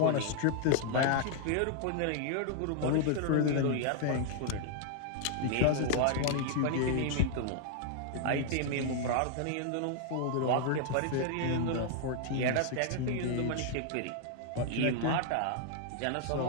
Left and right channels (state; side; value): different; both; correlation 0.00